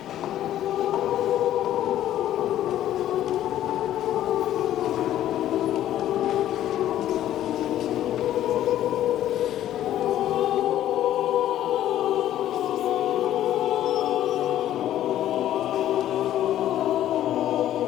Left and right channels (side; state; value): right; quieter; 12.3 dB